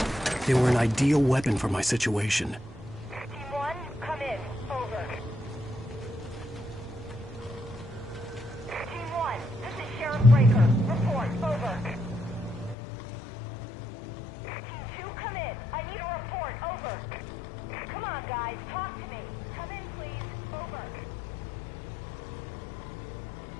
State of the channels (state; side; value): drops out; right; at 12.8 s